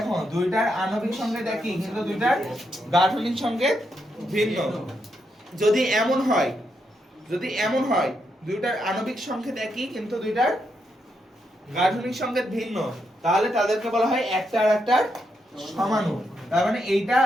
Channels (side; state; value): both; normal; correlation 0.81